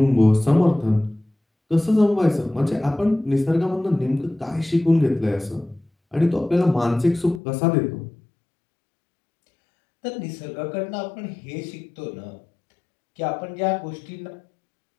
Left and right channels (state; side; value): drops out; right; at 7.4 s